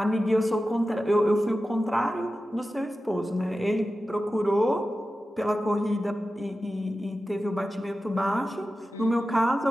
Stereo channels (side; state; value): both; normal; correlation 0.93